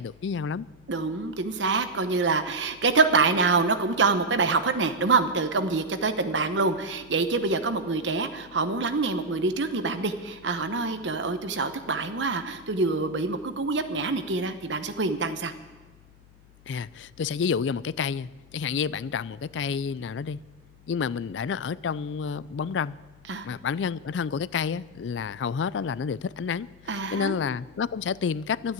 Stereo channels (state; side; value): noise; left; hum, 26 dB below the sound